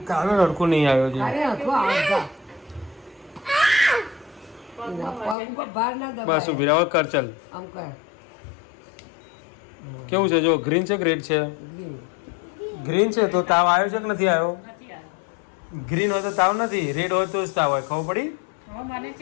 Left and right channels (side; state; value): right; drops out; at 5.4 s